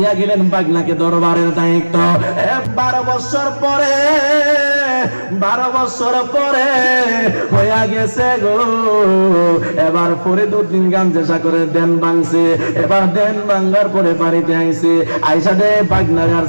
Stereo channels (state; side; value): inverted; both; correlation -1.00